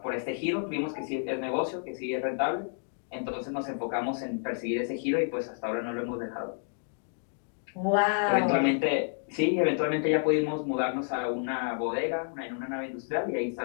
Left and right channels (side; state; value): right; silent; digital silence